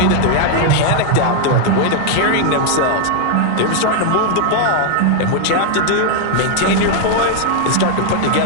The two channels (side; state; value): both; different; correlation 0.00